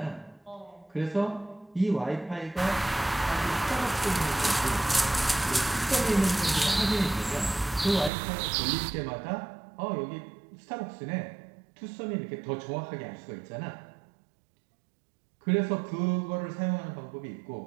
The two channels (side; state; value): left; drops out; at 8.1 s